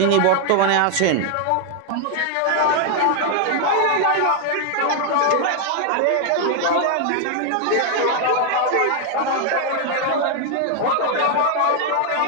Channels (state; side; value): different; both; correlation 0.00